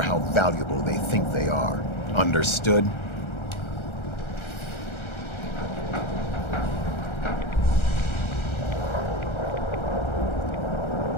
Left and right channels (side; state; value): right; late; 1.3 ms